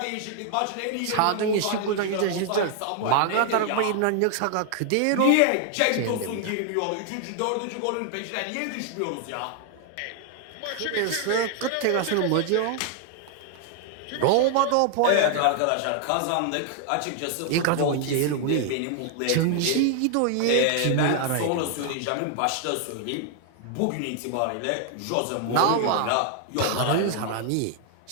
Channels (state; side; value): different; both; correlation 0.00